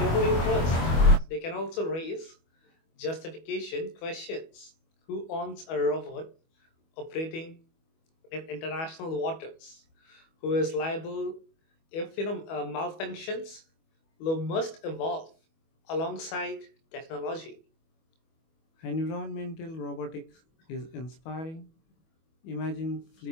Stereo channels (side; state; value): right; late; 25 ms